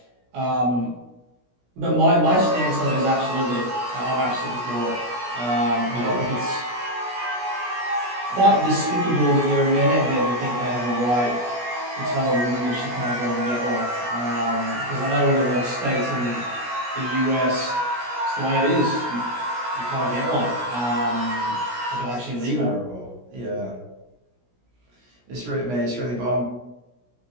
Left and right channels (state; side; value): late; left; 16 ms